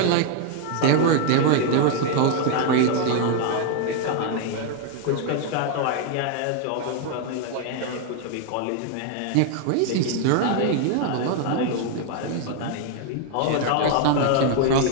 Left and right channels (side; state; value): both; different; correlation 0.00